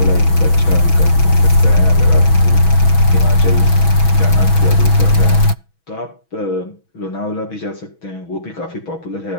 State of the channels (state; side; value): late; right; 6.2 ms